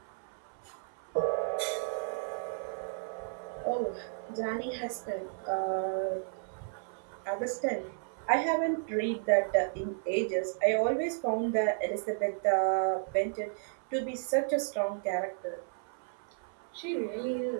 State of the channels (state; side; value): silent; left; 56 dB below the other